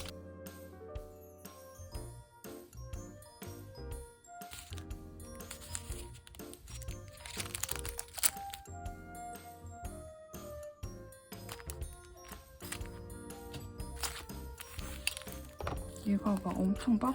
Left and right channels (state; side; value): identical; both; correlation 1.00